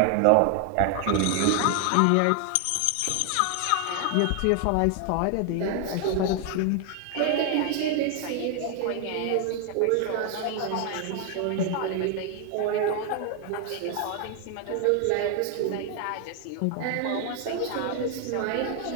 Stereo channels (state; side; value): different; both; correlation 0.00